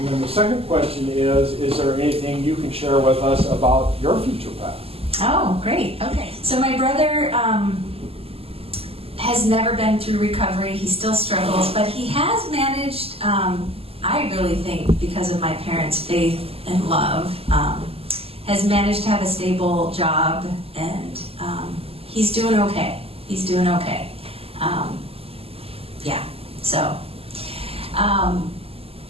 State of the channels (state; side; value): late; left; 0.28 ms